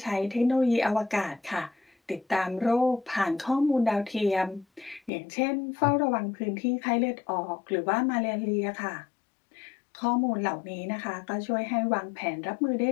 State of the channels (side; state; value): right; drops out; at 5.1 s